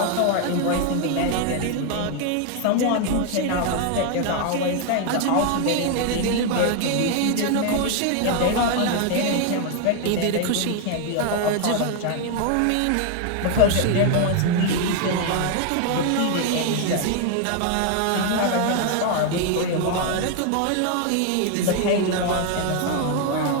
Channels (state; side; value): different; both; correlation 0.01